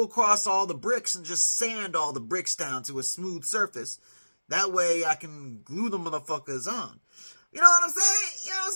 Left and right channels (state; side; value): inverted; both; correlation -1.00